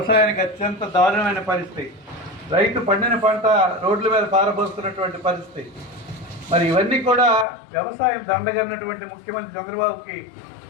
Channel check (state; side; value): drops out; right; at 7.5 s